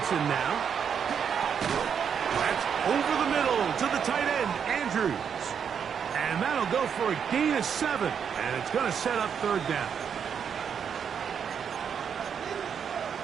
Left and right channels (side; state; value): left; quieter; 7.4 dB